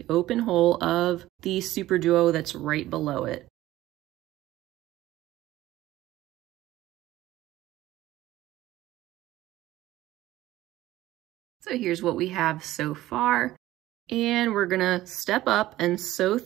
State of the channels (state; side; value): quieter; left; 15.7 dB